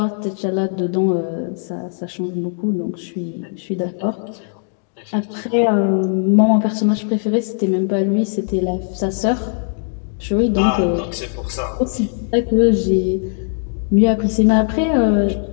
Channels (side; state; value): right; silent; digital silence